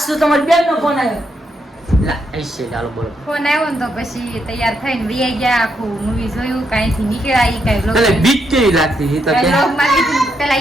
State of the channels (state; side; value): normal; both; correlation 0.79